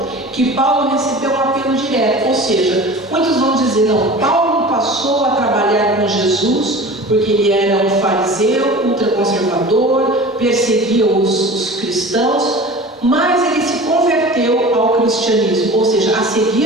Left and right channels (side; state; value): both; normal; correlation 0.38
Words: que Paulo recebeu um apelo direto, ou seja, muitos vão dizer, não, Paulo passou a trabalhar com Jesus porque ele era um fariseu, ultraconservador, perseguia os cristãos, mas ele se converteu ao cristianismo, ou seja, a